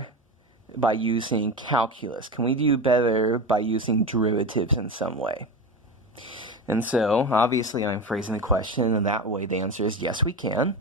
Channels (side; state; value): both; normal; correlation 0.24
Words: by using calculus? Can we do better by using derivatives in some way? And so, obviously, I'm phrasing the question in that way. The answer is yes, we can.